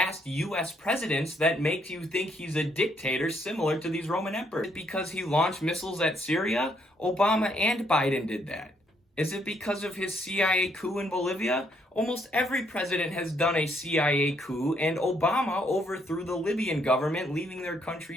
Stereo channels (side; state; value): both; normal; correlation 0.71